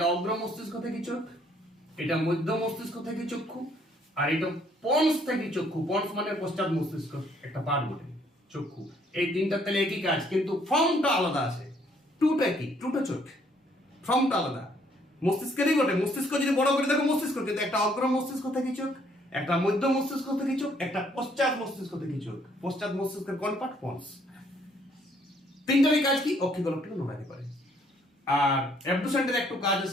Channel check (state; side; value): normal; both; correlation 0.65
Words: অগ্র মস্তিষ্ক থেকে চোখ, এটা মধ্য মস্তিষ্ক থেকে চক্ষু, আর এটা পন্স থেকে চক্ষু। পন্স মানে পশ্চাৎ মস্তিষ্ক একটা পার্ট বটে, চক্ষু। এই তিনটা তাহলে একই কাজ, কিন্তু ফর্মটা আলাদা আছে। টুটা কি? টুটা চোখ, ফর্মটা আলাদা। মস্তিষ্কেরই বটে। মস্তিষ্ক যদি বড় করে দেখো মস্তিষ্ক, কিন্তু একটা অগ্র মস্তিষ্ক থেকে চোখ, একটা মধ্য মস্তিষ্ক থেকে চোখ, একটা পশ্চাৎ মস্তিষ্ক থেকে চোখ। পশ্চাৎ মস্তিষ্কের কোন পার্ট? পন্স। তিনটারই কাজ কি? অক্ষিগোলকটাকে নড়াতে পারে। আর অ্যাবডুসেন্টের একটু কাজ